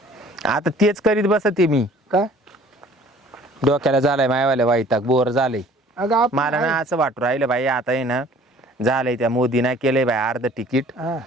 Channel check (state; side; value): normal; both; correlation 0.52